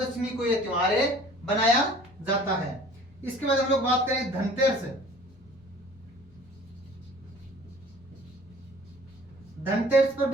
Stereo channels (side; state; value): left; noise; hum, 28 dB below the sound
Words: को यह त्योहार बनाया जाता है। इसके बाद हम लोग बात करें धनतेरस। धनतेरस पर